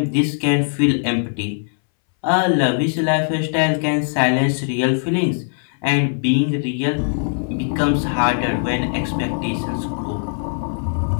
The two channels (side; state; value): right; silent; 63 dB below the other